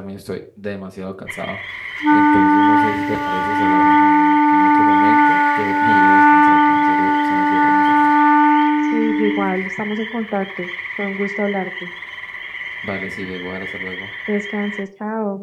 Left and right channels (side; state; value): both; identical; correlation 1.00